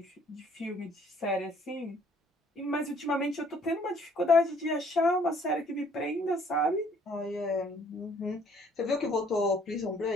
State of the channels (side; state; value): both; normal; correlation 0.61